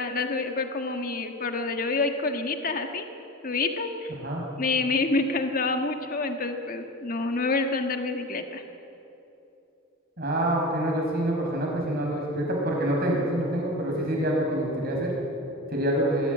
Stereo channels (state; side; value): normal; both; correlation 0.30